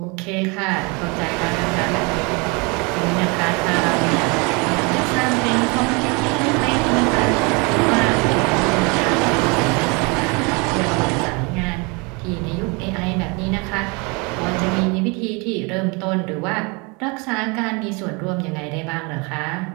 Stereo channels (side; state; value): left; quieter; 29.6 dB